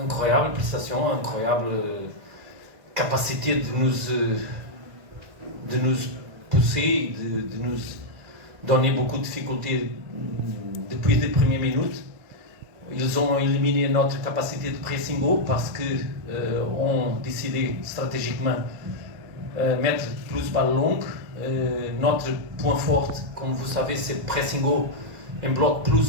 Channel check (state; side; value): late; left; 1.9 ms